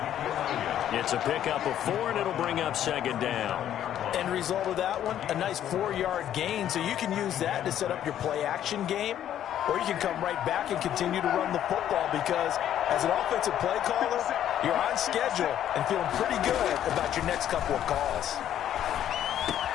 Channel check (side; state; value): right; quieter; 10.9 dB